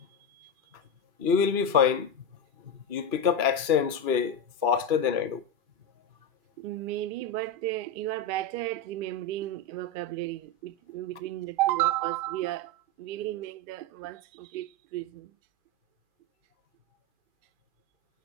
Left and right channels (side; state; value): left; late; 2.4 ms